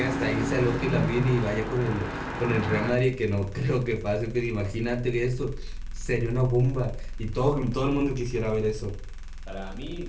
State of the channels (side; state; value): both; identical; correlation 1.00